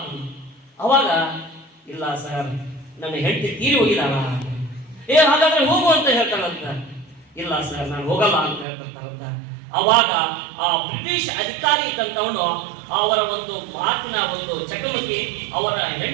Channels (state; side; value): drops out; left; at 8.7 s